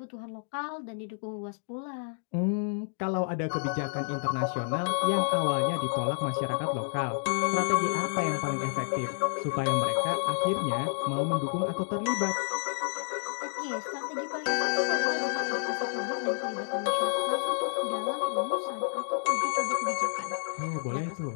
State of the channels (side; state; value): right; silent; digital silence